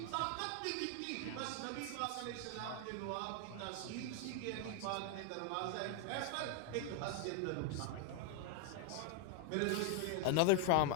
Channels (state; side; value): different; both; correlation 0.01